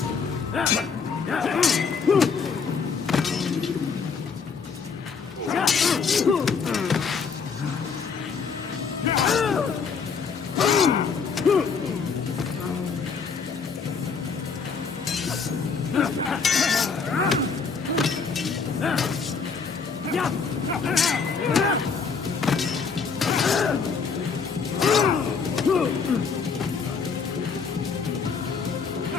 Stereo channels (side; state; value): right; quieter; 5.5 dB